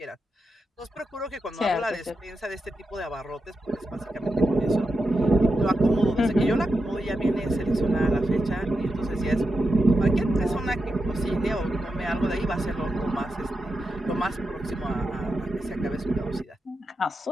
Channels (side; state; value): both; normal; correlation 0.88